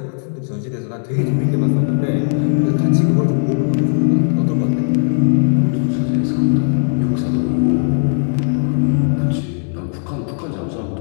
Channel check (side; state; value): right; silent; 68 dB below the other